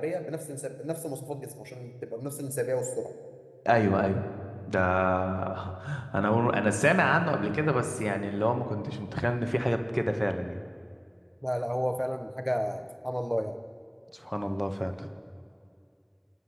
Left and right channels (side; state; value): both; identical; correlation 1.00